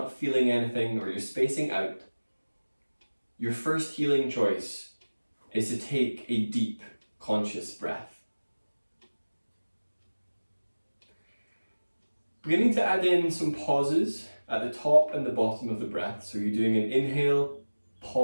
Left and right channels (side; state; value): both; inverted; correlation -1.00